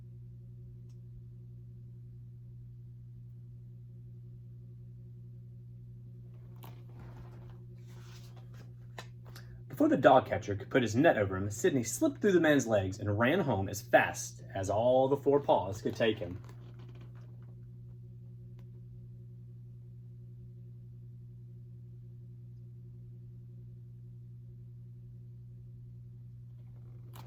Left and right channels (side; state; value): both; identical; correlation 1.00